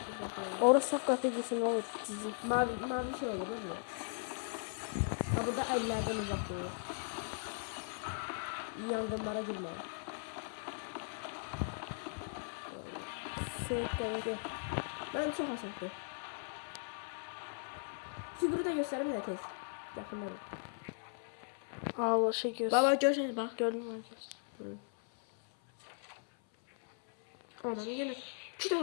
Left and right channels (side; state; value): right; silent; 52 dB below the other